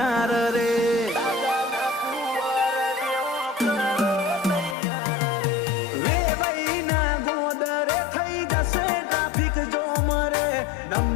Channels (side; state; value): right; drops out; at 4.8 s